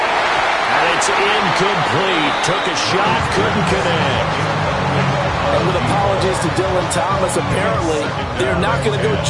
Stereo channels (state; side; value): identical; both; correlation 1.00